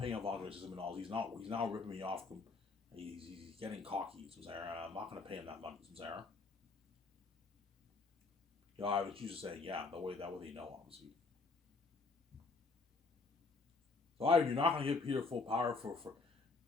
Yvonne Joy $6 million. He's not ripping me off. He's getting cocky. I'm not going to pay him that money. I would choose to say yeah. That way they know, obviously. So you're not going to give Peter full power for.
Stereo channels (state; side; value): quieter; right; 4.0 dB